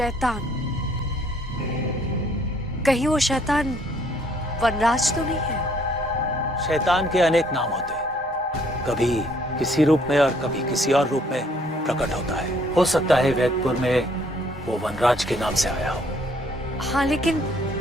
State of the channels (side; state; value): both; normal; correlation 0.64